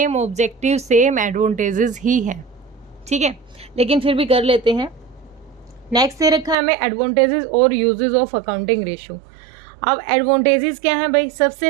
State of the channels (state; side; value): drops out; left; at 6.6 s